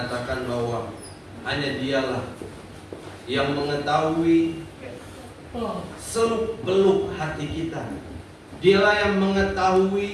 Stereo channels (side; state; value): both; identical; correlation 1.00